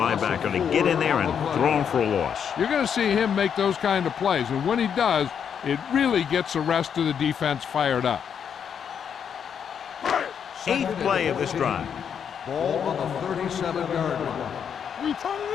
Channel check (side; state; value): right; quieter; 7.7 dB